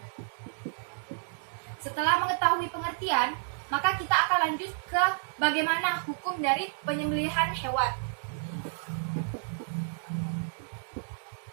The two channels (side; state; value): left; silent; digital silence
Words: Setelah mengetahui pengertian, maka kita akan lanjut ke bagaimana hukum dari penyembelihan hewan.